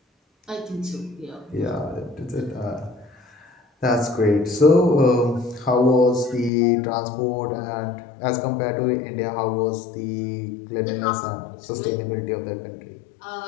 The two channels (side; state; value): right; drops out; at 6.5 s